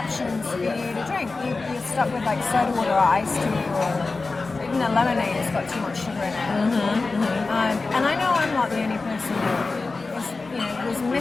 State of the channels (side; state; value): right; quieter; 3.8 dB